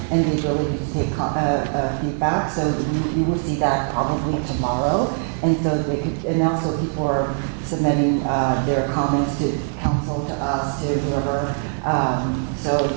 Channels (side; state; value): left; silent; 57 dB below the other